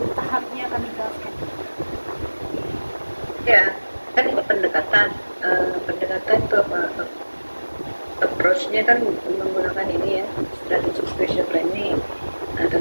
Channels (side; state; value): both; inverted; correlation -1.00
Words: harusnya kan menggunakan ini ya, strategic spatial planning. Nah,